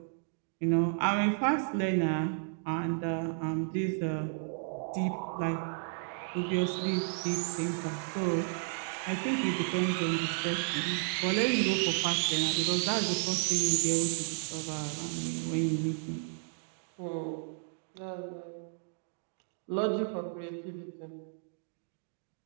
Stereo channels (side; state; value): left; silent; digital silence